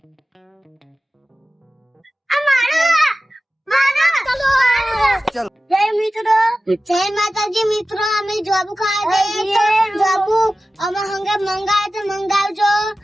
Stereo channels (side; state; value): both; normal; correlation 0.95